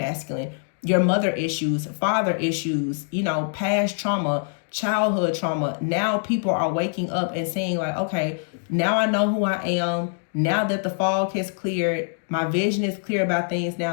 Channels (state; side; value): silent; right; digital silence